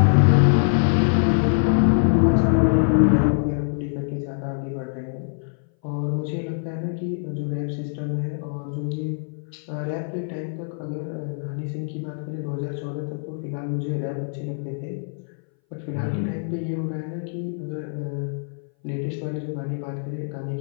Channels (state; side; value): silent; right; 60 dB below the other